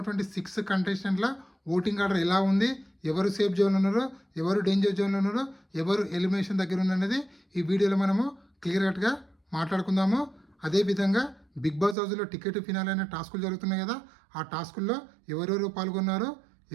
6 కంటెస్టెంట్ల ఓటింగ్ ఆర్డర్ ఎలా ఉంది, ఎవరు సేఫ్ జోన్లో ఉన్నారో, ఎవరు డేంజర్ జోన్లో ఉన్నారో, ఎవరు ఎలిమినేషన్ దగ్గర ఉన్నది ఈ వీడియోలో మనము క్లియర్ కట్గా మాట్లాడుకుందాము. అదేవిధంగా బిగ్ బాస్ హౌస్లో టికెట్ ఫినాల్ అనే టాస్కులు జరుగుతున్నాయి కదా, ఆ టాస్కుల్లో ఎవరెవరు పాల్గొన్నారో,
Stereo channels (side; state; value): left; drops out; at 12.0 s